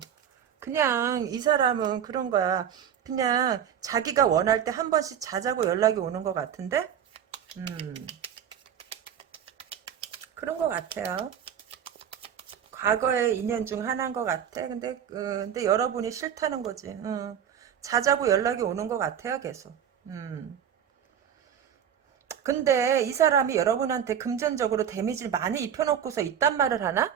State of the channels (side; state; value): left; quieter; 9.0 dB